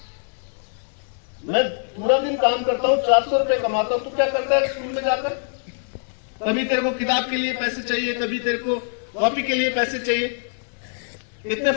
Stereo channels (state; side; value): silent; right; digital silence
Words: मैं पूरा दिन काम करता हूँ, 400 रुपए कमाता हूँ, तू क्या करता है स्कूल में जाकर? कभी तेरे को किताब के लिए पैसे चाहिए, कभी तेरे को कॉपी के लिए पैसे चाहिए। इतने